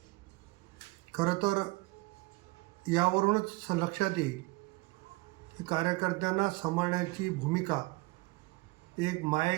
खरं तर यावरूनच लक्षात येईल की कार्यकर्त्यांना सांभाळण्याची भूमिका, एक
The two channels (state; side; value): quieter; left; 24.2 dB